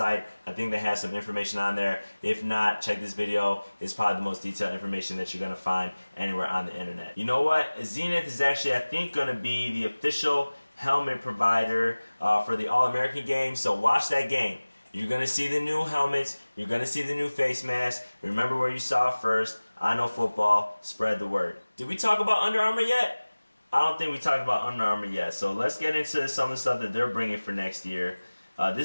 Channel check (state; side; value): inverted; both; correlation -1.00